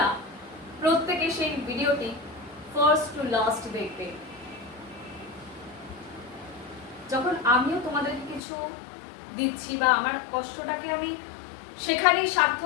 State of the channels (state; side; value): drops out; right; at 8.4 s